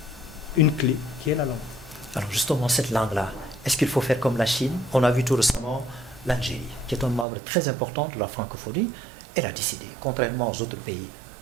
une clé qui est la langue. Alors justement, cette langue-là, est-ce qu'il faut faire comme la Chine? On a vu tout récemment l'Algérie, qui est un membre très important de la francophonie. Elle a décidé, contrairement aux autres pays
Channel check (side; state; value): left; drops out; at 7.2 s